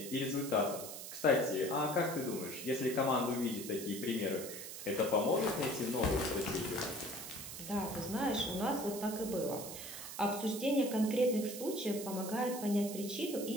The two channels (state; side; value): noise; right; hiss, 9 dB below the sound